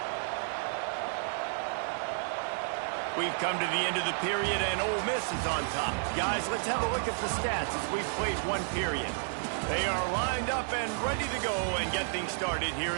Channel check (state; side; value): silent; left; digital silence